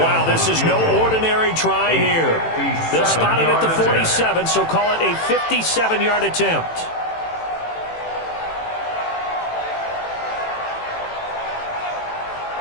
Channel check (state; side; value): late; right; 18 ms